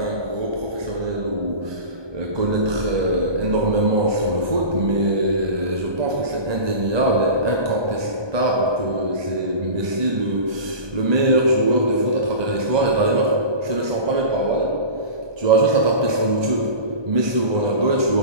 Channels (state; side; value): late; left; 1.2 ms